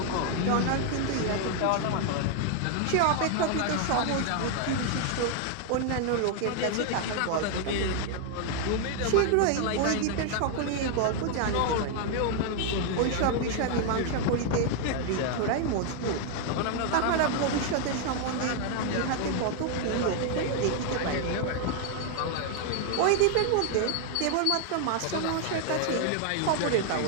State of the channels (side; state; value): both; different; correlation 0.00